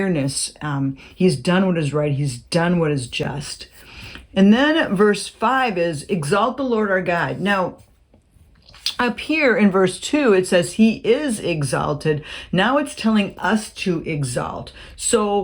He's done what is right. He's done what is just. And then verse 5 is, exalt the Lord our God. Now, up here in verse 2, it says he is exalted. Now it's telling us to exalt.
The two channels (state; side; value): identical; both; correlation 1.00